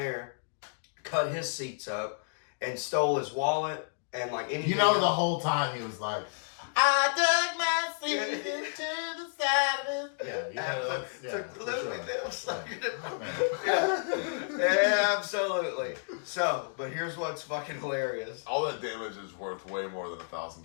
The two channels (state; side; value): silent; right; digital silence